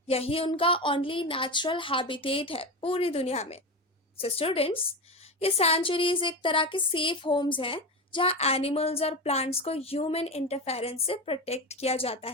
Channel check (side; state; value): both; normal; correlation 0.20